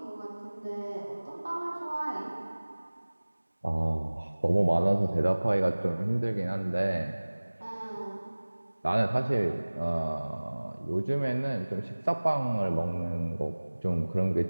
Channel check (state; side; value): inverted; both; correlation -1.00